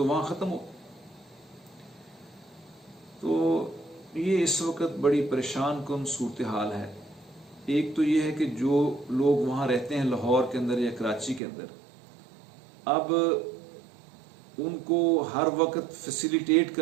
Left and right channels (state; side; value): drops out; left; at 11.4 s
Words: وہاں ختم ہو۔ تو یہ اس وقت بڑی پریشان کن صورتحال ہے۔ ایک تو یہ ہے کہ جو لوگ وہاں رہتے ہیں لاہور کے اندر یا کراچی کے اندر، اب ان کو ہر وقت فیسیلیٹیٹ